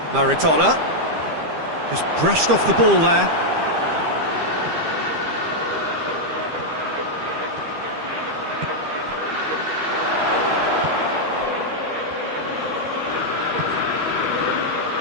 Maradona just brushed off the ball there.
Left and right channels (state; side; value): late; left; 13 ms